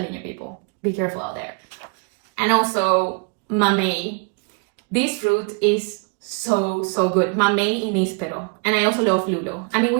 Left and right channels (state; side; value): quieter; left; 36.3 dB